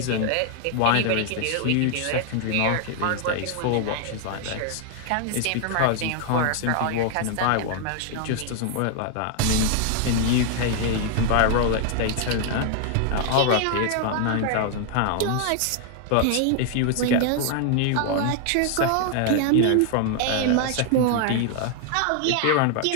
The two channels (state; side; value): different; both; correlation 0.00